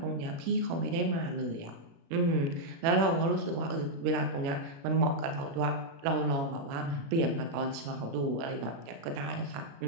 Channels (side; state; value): left; late; 36 ms